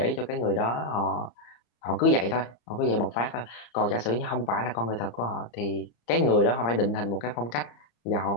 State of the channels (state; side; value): late; right; 34 ms